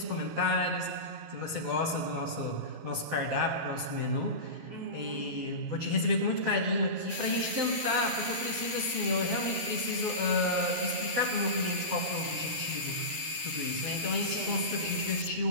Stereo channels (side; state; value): left; late; 12 ms